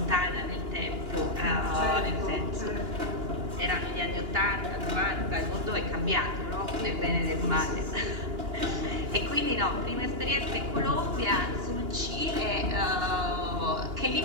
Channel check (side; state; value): left; late; 2.8 ms